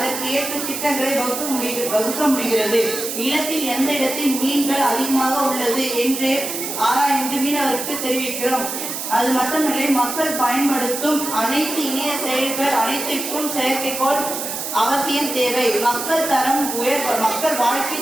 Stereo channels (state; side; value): noise; right; hiss, 5 dB below the sound